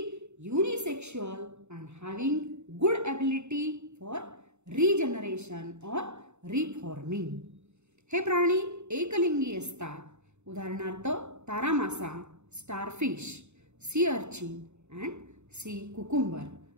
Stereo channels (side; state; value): left; late; 0.82 ms